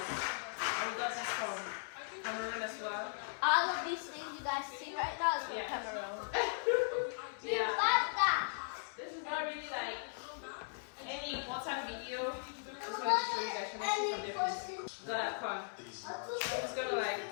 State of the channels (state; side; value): silent; right; 52 dB below the other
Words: And we got this from Cameroon as well. All of these things you guys see right now is from Cameroon. Yeah. This is not really like any important video. Just wanted to show you guys. Can I see from there, please? Got a corn. I'm just gonna like